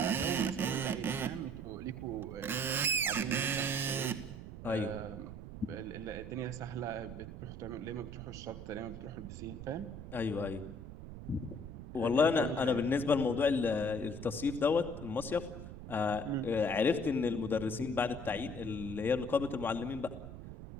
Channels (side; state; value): right; noise; rumble, 11 dB below the sound